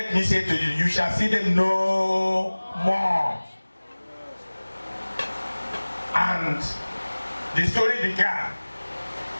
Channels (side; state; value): both; inverted; correlation -1.00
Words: me say to you, you shall see them no more. And the story began